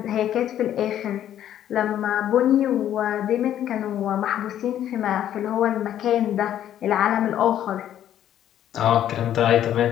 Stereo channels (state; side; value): quieter; right; 11.1 dB